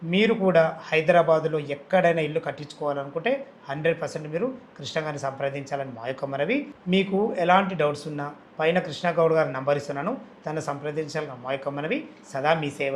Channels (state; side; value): identical; both; correlation 1.00